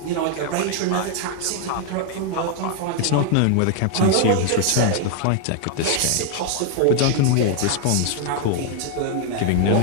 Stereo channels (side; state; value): both; different; correlation 0.00